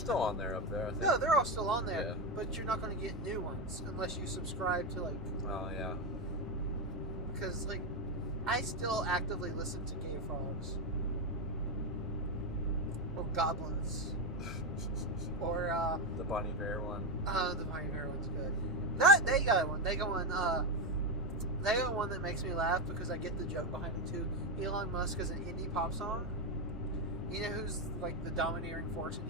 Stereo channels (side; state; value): both; normal; correlation 0.10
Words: on there up there, I think. No, they're all still on there, Yeah. but you're not going to get new ones unless you subscribe to, like, Oh, yeah. because, like, I still actively listen to Gay Frogs. Or Goblins. Or, The Bonnie Bear one. the Bonnie Bear one's good. They got one. They got one that makes me laugh because I get the joke behind it too. Elon Musk is an indie pop song. You know who's like the domineering force in